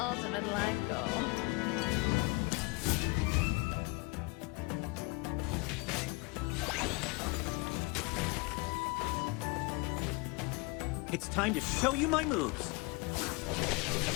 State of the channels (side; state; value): right; quieter; 27.3 dB